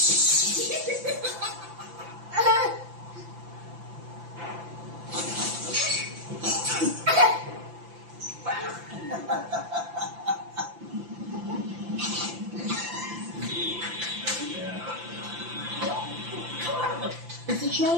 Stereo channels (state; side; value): late; left; 5.9 ms